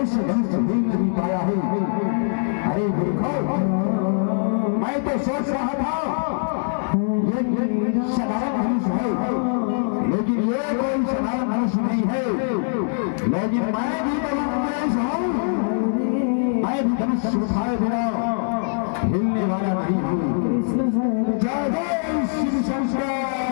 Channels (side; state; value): right; silent; digital silence